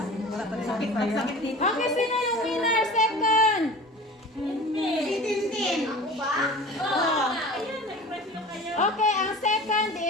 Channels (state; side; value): normal; both; correlation 0.39